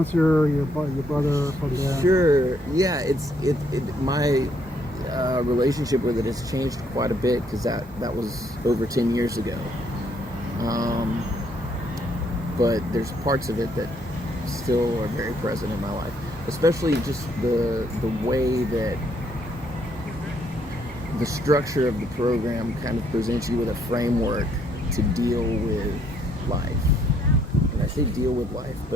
your brother from there. Sure, yeah. relationship with it has changed quite a bit, because that was over 10 years ago. But there's parts of it that still are very present in my life, especially just the way that the structure of the program kind of presents you with a framework to deal with life. And I say deal with life,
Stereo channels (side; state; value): both; normal; correlation 0.70